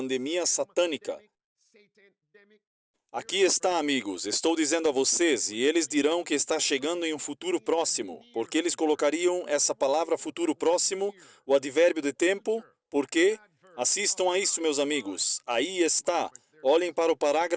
satânica. Aqui está, amigos, estou dizendo a vocês, e eles dirão que está chegando em um futuro próximo, porque eles colocariam essa palavra futuro próximo, o advérbio de tempo, porque, assistam a isso, meus amigos, aí está, olhem para o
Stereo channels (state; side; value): identical; both; correlation 1.00